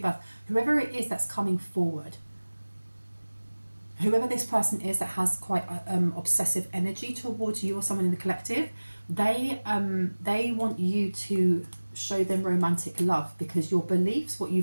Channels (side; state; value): both; inverted; correlation -1.00